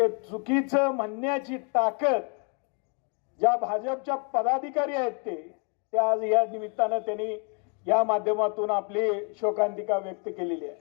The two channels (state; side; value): quieter; right; 37.1 dB